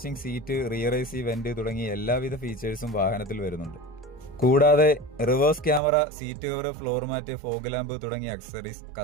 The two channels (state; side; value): drops out; left; at 5.8 s